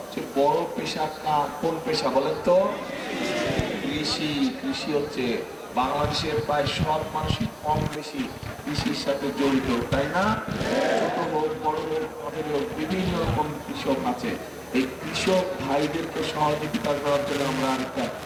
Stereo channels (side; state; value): both; identical; correlation 1.00